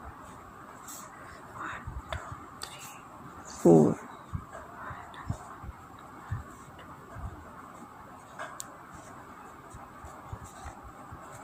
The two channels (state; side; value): identical; both; correlation 1.00